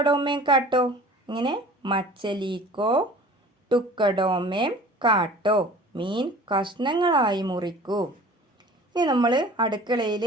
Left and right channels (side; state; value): both; normal; correlation 0.44